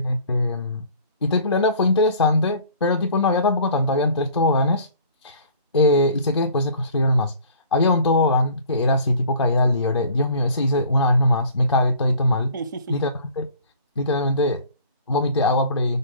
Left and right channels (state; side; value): inverted; both; correlation -0.49